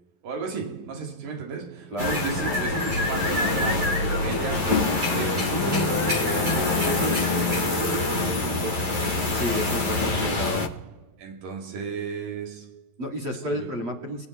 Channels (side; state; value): left; late; 11 ms